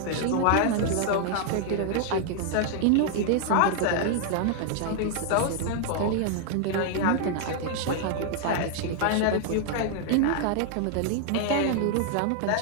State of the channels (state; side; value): different; both; correlation 0.00